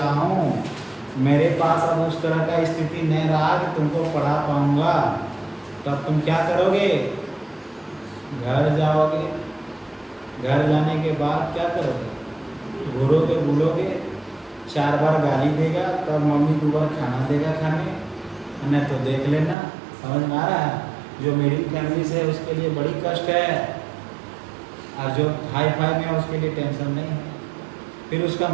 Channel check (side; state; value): left; drops out; at 19.6 s